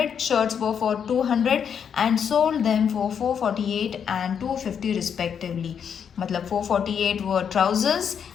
shirts were for 200 and sold them for 448 and 250 respectively. Matlab 448 were trousers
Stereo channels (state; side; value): quieter; right; 7.6 dB